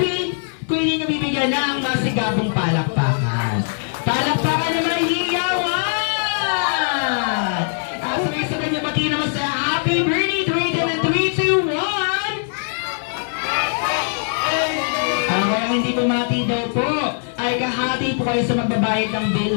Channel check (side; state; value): right; silent; 58 dB below the other